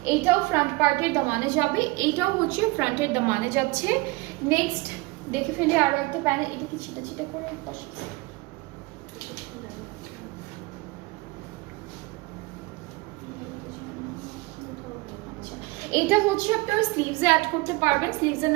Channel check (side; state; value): left; quieter; 23.3 dB